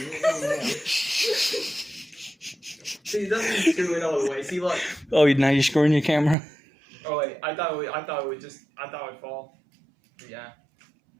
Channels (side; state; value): left; drops out; at 6.4 s